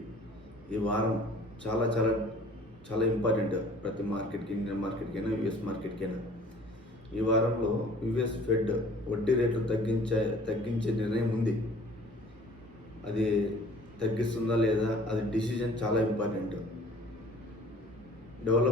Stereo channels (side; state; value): both; normal; correlation 0.51